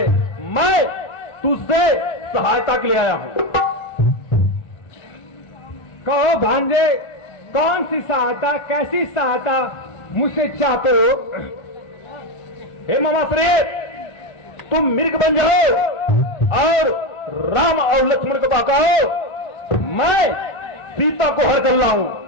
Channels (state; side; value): late; right; 1.4 ms